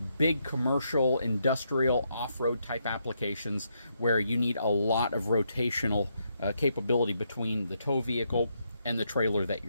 big commercial, industrial, off-road type applications where you need a lot of rotational capability between the tow vehicle and the trailer that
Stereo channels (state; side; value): inverted; both; correlation -0.78